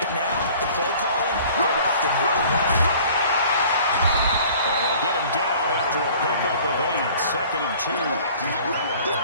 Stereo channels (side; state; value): both; inverted; correlation -0.50